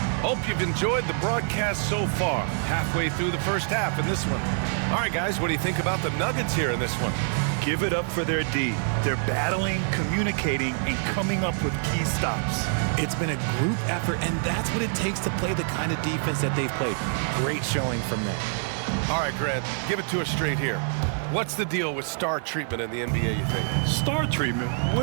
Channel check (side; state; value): left; silent; 61 dB below the other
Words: Hope you've enjoyed the broadcast so far. Halfway through the first half in this one. All right, guys, what do you think about the Nuggets here in this one? Give it up for their D. They're battling, communicating, and coming up with key stops. It's been a group effort, and that's what it takes to play the kind of defense that they've played. Great showing from them. All right, Grant, give it to us straight here. What's the deal with star treatment in the NBA, you think? Star treatment?